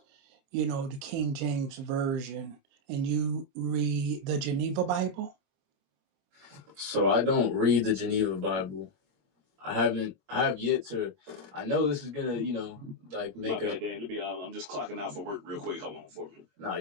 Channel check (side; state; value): left; late; 21 ms